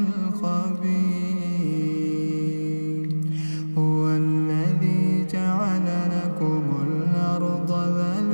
هو الذي جعل لكم الأرض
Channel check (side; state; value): both; inverted; correlation -1.00